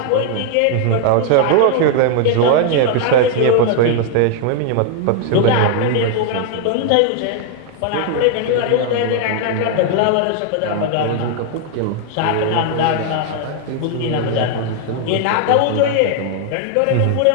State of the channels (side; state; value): both; different; correlation 0.00